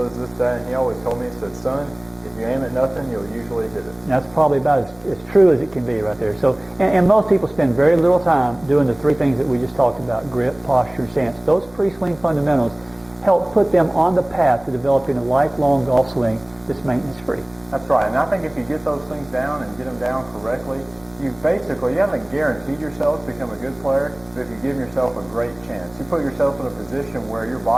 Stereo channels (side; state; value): right; noise; hum, 27 dB below the sound